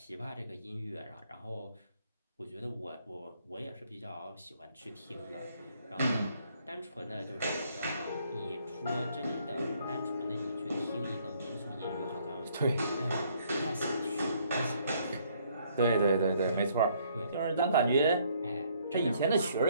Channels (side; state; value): both; inverted; correlation -0.65